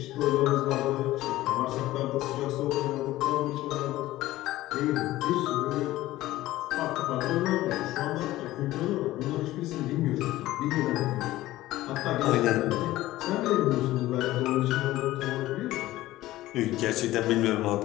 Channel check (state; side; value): quieter; right; 16.2 dB